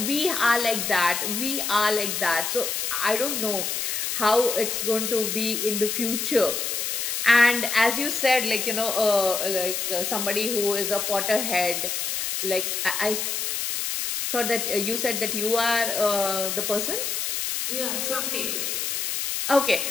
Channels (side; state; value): left; noise; hiss, 1 dB below the sound